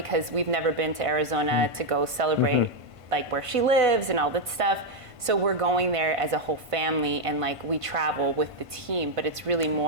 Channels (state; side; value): late; left; 1.5 ms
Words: we've never been to Arizona to go celebrate like where she lives and all that stuff. So we're going there as a whole family, and like we travel with the team, but it's really